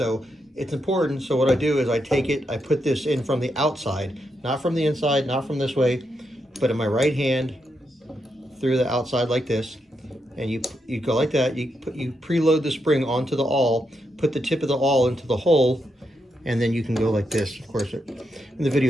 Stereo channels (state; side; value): normal; both; correlation 0.83